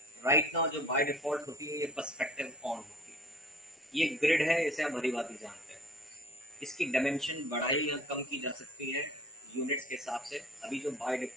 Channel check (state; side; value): normal; both; correlation 0.48